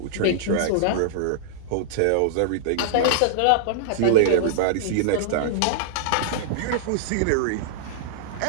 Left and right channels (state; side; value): different; both; correlation -0.01